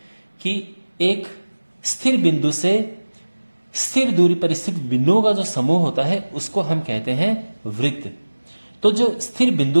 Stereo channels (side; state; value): both; inverted; correlation -1.00